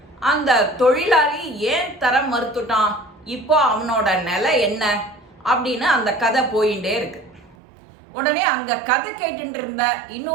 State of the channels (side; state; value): left; drops out; at 7.6 s